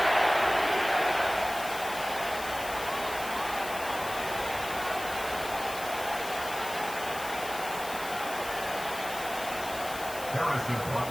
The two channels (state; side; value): noise; left; hiss, 11 dB below the sound